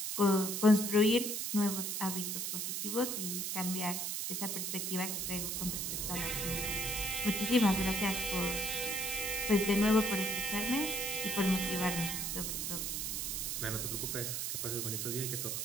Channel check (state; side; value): noise; right; hiss, 2 dB below the sound